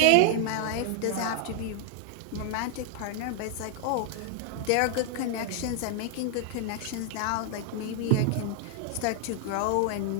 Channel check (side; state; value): both; different; correlation -0.01